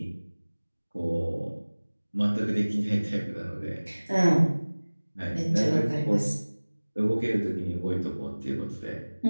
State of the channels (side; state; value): both; inverted; correlation -1.00